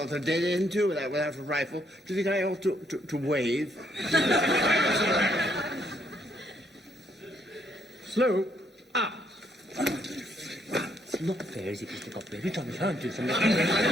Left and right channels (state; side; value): normal; both; correlation 0.72